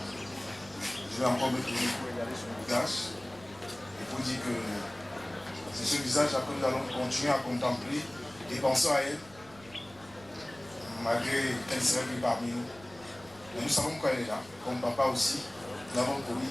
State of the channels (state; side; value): noise; right; rumble, 23 dB below the sound